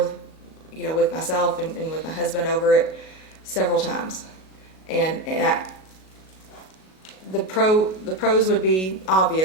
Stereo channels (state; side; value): late; right; 37 ms